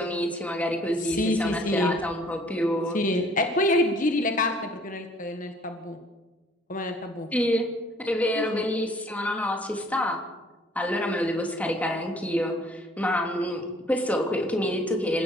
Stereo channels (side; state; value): both; normal; correlation 0.57